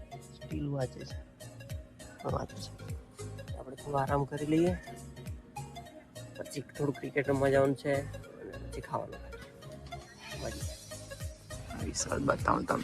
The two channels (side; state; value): both; identical; correlation 1.00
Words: સ્ટીલ વાંચે છે. વાંચે છે આપણે થોડો આરામ કરી લઈએ પછી થોડું ક્રિકેટ રમવા જવાનું છે અને પછી ખાવાનું વિશાલ બતાવું